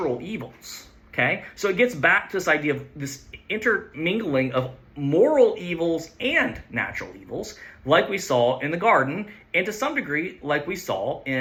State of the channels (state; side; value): identical; both; correlation 1.00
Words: evils, okay? So it gets back to this idea of this intermingling of moral evils and natural evils, like we saw in the garden, and to some degree like we saw